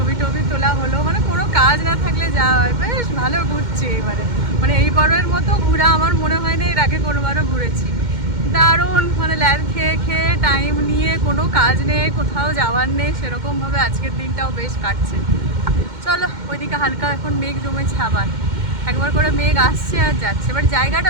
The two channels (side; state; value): left; late; 2.1 ms